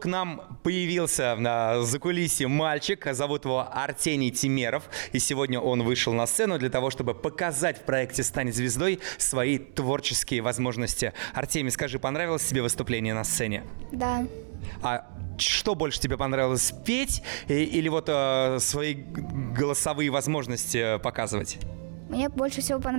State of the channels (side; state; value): left; silent; digital silence